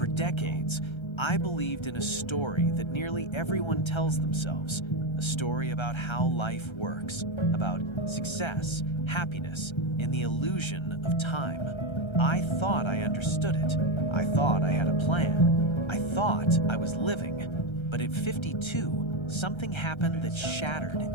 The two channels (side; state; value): right; late; 1.3 ms